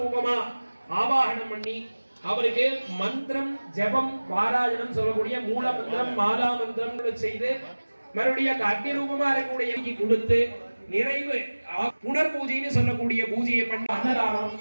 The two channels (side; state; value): both; inverted; correlation -1.00